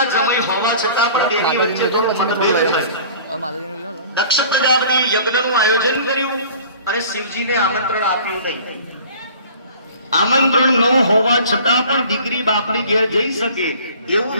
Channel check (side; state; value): both; inverted; correlation -0.46